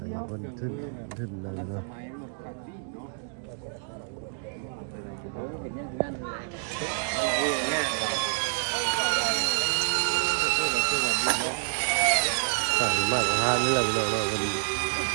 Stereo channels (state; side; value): silent; left; digital silence